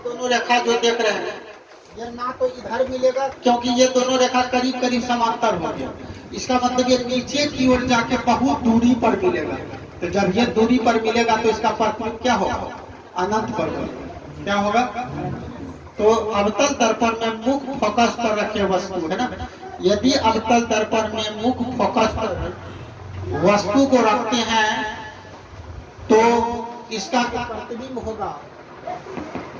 दोनों रेखा जो देख रहे हैं ये ना तो इधर मिलेगा क्योंकि ये दोनों रेखा करीब करीब समांतर हो गया, इसका मतलब ये नीचे की ओर जाके बहुत दूरी पर मिलेगा। तो जब ये दूरी पर मिलेगा तो इसका प्रतिबिंब क्या होगा, अनंत पर होगा। क्या होगा, तो अवतल दर्पण में मुख्य फोकस पर रखे वस्तु है ना, यदि अवतल दर्पण में मुख्य फोकस पर वस्तु को रखते हैं तो इसका प्रतिबिंब होगा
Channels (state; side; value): identical; both; correlation 1.00